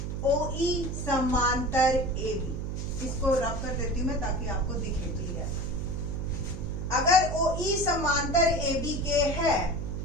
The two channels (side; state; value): right; noise; hum, 4 dB below the sound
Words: OE समांतर AB, इसको रब कर देती हूं मैं ताकि आपको दिखे क्लियर। अगर OE समांतर AB के है